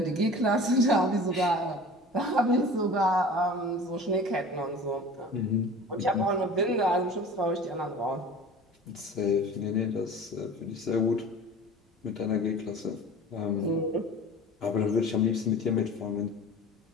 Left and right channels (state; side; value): normal; both; correlation 0.40